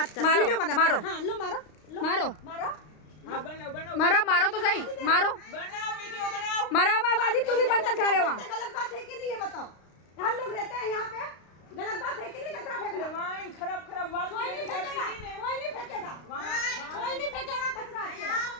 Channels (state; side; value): late; right; 32 ms